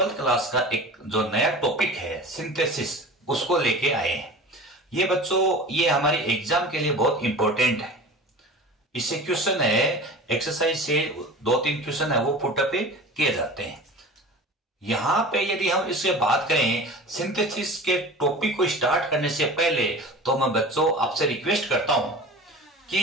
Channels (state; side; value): normal; both; correlation 0.37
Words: क्लास का एक जो नया टॉपिक है सिंथेसिस, उसको लेके आए हैं। ये बच्चों, ये हमारे एग्जाम के लिए बहुत इंपॉर्टेंट है। इससे क्वेश्चन है, एक्सरसाइज से 2-3 क्वेश्चन है वो पुटअप पे किए जाते हैं। यहां पे यदि हम इससे बात करें सिंथेसिस के टॉपिक को स्टार्ट करने से पहले, तो मैं बच्चों आपसे रिक्वेस्ट करता हूं